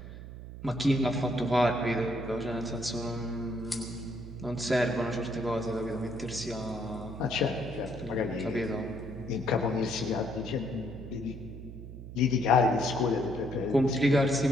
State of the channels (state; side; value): noise; right; hum, 12 dB below the sound